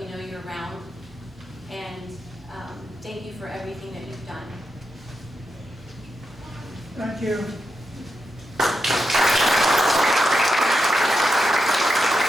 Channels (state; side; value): normal; both; correlation 0.87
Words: know you're around. And thank you for everything that you've done. Thank you.